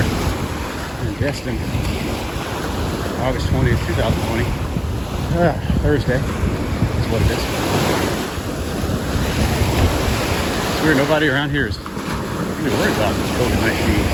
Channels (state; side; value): identical; both; correlation 1.00